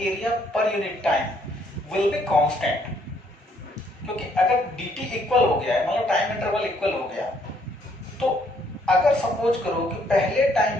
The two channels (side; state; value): both; normal; correlation 0.68